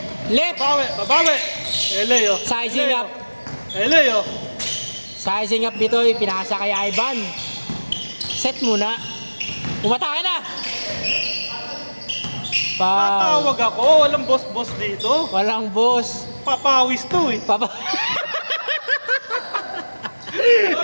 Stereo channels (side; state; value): both; inverted; correlation -1.00